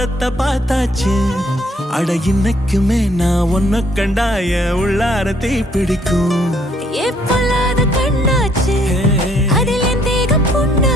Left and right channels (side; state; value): both; normal; correlation 0.66